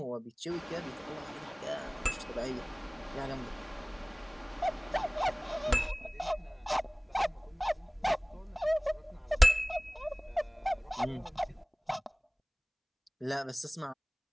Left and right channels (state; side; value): identical; both; correlation 1.00